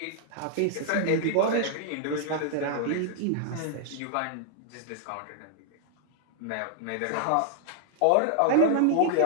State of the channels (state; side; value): different; both; correlation -0.01